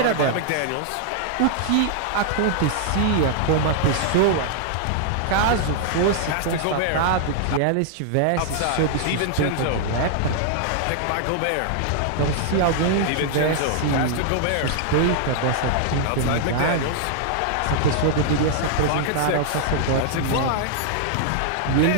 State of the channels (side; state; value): both; different; correlation -0.01